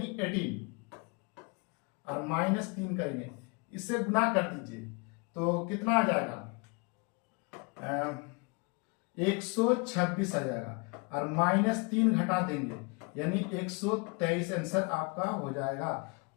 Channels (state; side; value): quieter; right; 31.2 dB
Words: 18, और -3 करेंगे, इससे गुना कर दीजिए तो कितना आ जाएगा, 126 आ जाएगा, और -3 घटा देंगे यानी 123 आंसर आपका हो जाएगा।